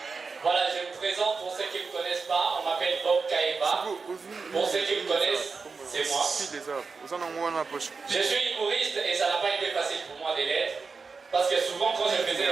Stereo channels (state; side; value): quieter; left; 4.7 dB